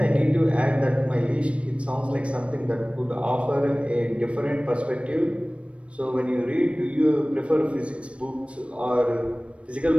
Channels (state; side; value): late; left; 0.061 ms